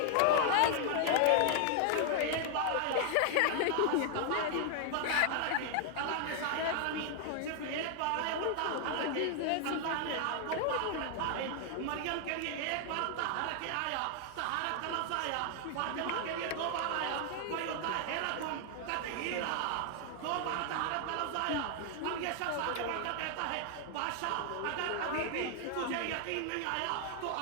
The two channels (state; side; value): different; both; correlation 0.00